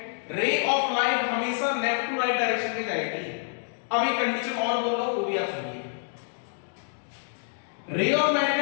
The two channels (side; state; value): right; silent; digital silence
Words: रे ऑफ लाइट हमेशा लेफ्ट टू राइट डायरेक्शन में जाएगी। अब एक कंडीशन और बोल रहा हूं वो भी आप सुनिए। रे ऑफ लाइट का